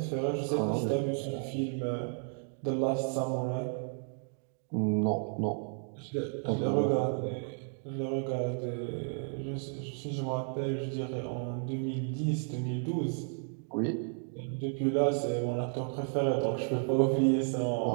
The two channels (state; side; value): silent; left; 56 dB below the other